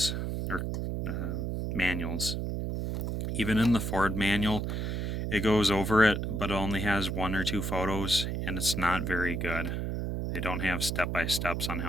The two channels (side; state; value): right; noise; hum, 2 dB below the sound